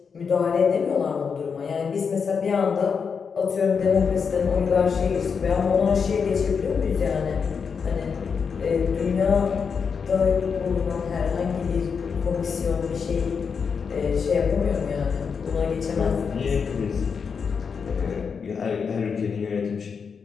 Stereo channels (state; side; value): quieter; right; 6.0 dB